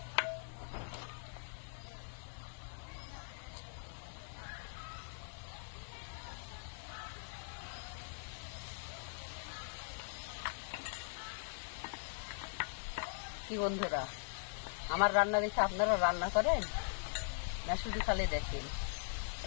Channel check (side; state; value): right; silent; digital silence